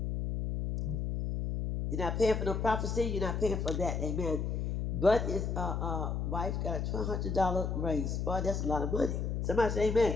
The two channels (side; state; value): left; noise; hum, 1 dB below the sound